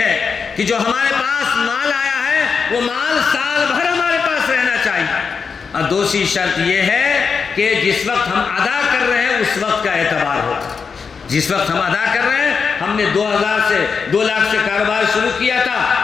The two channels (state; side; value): quieter; right; 5.6 dB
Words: کہ جو ہمارے پاس مال آیا ہے وہ مال سال بھر ہمارے پاس رہنا چاہیے، اور دوسری شرط یہ ہے کہ جس وقت ہم ادا کر رہے ہیں اس وقت کا اعتبار ہو، جس وقت ہم ادا کر رہے ہیں، ہم نے 2 لاکھ سے کاروبار شروع کیا تھا،